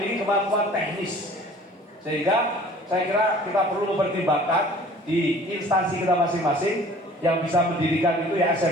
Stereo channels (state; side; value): normal; both; correlation 0.50